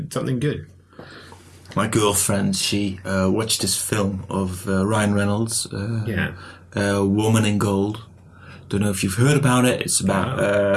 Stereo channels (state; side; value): identical; both; correlation 1.00